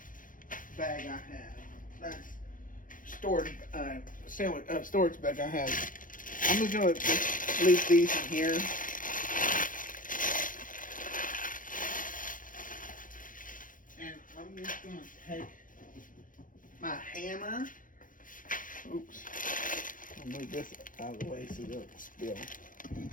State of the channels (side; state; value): right; late; 0.39 ms